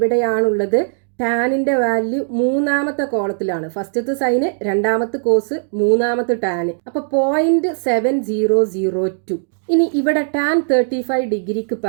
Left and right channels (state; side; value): silent; left; 66 dB below the other